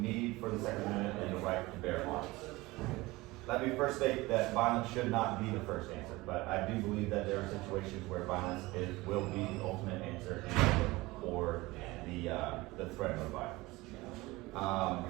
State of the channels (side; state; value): left; quieter; 20.8 dB